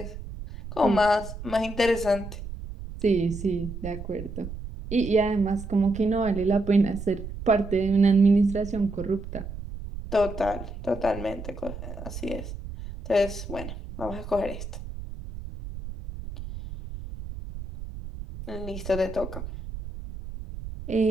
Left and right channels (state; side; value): noise; right; rumble, 10 dB below the sound